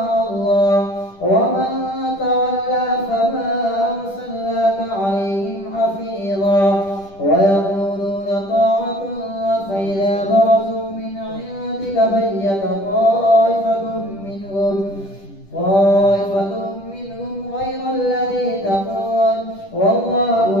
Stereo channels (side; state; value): right; late; 10 ms